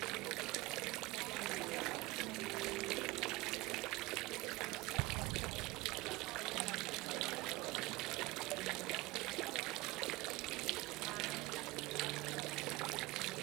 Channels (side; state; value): left; quieter; 21.3 dB